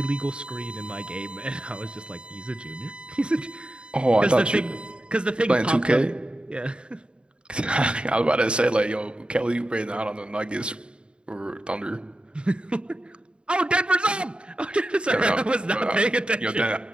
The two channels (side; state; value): left; late; 0.054 ms